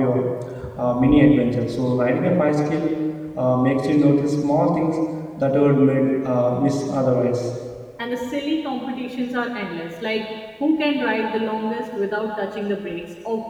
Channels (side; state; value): both; identical; correlation 1.00